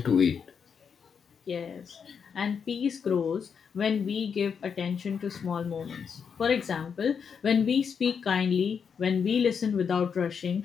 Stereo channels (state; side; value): quieter; right; 6.6 dB